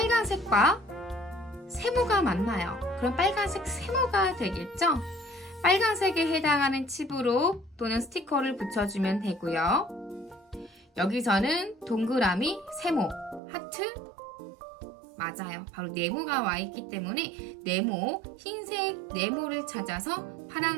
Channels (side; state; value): left; drops out; at 13.4 s